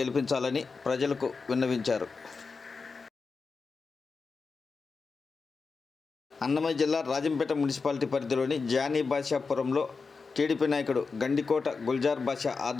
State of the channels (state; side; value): quieter; right; 4.6 dB